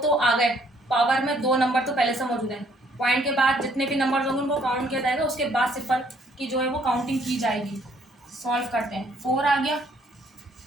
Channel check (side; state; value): both; normal; correlation 0.65